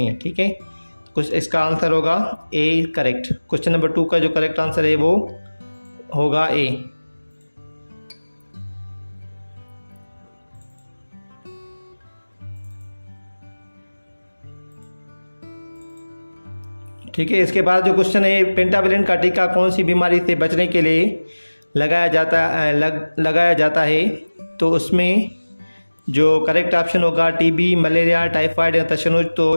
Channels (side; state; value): both; inverted; correlation -1.00